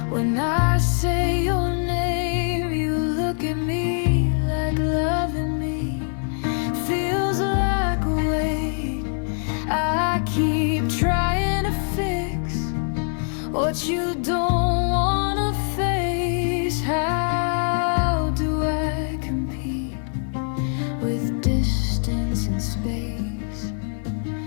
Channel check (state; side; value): silent; right; 63 dB below the other